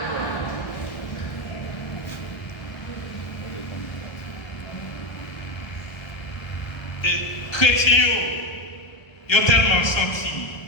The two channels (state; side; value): late; right; 1.1 ms